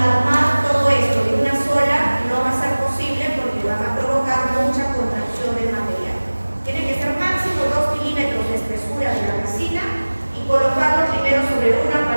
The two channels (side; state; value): both; inverted; correlation -1.00